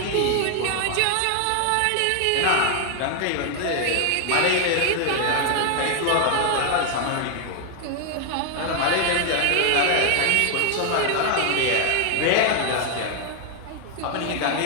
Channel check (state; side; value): different; both; correlation 0.00